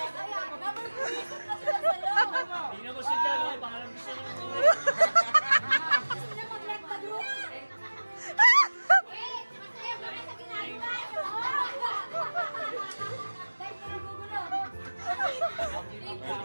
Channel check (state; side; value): inverted; both; correlation -1.00